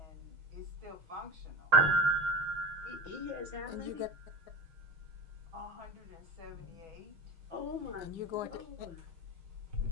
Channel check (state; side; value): late; left; 5.8 ms